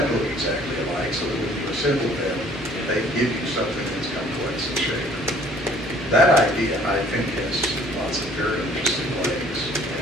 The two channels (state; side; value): normal; both; correlation 0.56